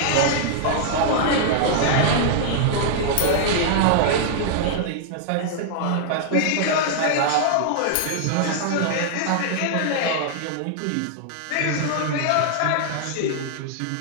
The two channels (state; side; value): different; both; correlation -0.01